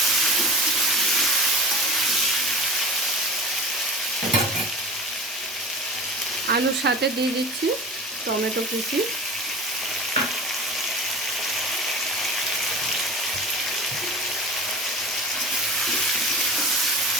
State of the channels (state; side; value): normal; both; correlation 0.35